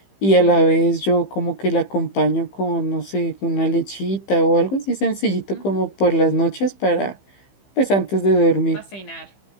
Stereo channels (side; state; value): right; late; 15 ms